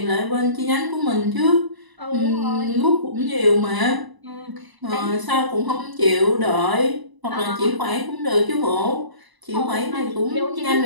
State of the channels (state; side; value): late; left; 1.0 ms